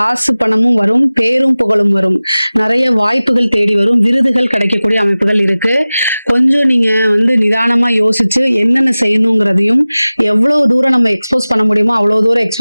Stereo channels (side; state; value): both; inverted; correlation -0.98